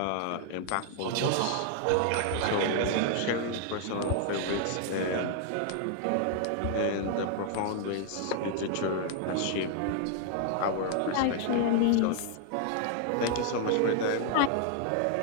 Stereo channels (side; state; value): both; different; correlation 0.00